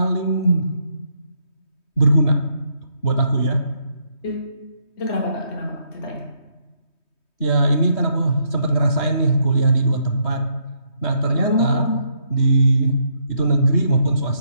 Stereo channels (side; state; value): right; late; 3.2 ms